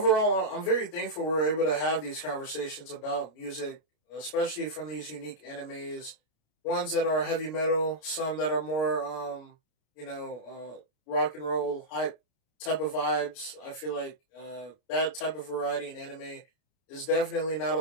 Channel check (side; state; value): right; late; 32 ms